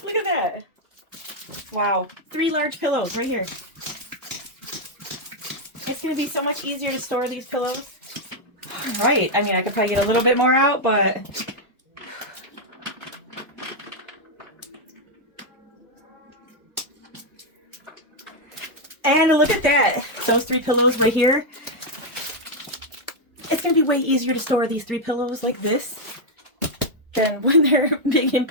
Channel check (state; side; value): normal; both; correlation 0.00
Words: Look at that. Wow. 3 large pillows right here. It's going to be so much easier to store these pillows. Right. I mean, I could probably get a little bit more out, but... And look at that. Those 3 pillows right here. It's going to be way easier to store these 3 pillows like this than when they're big and